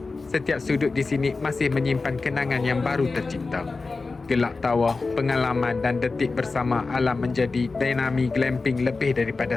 setiap sudut di sini masih menyimpan kenangan yang baru tercipta. Gelak tawa, pengalaman dan detik bersama alam menjadi Dinami Glamping lebih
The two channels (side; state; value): right; quieter; 3.9 dB